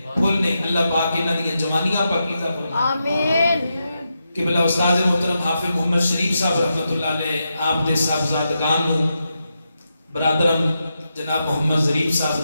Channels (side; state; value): both; inverted; correlation -0.86